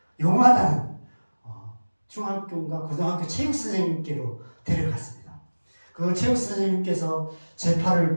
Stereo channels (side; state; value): both; inverted; correlation -1.00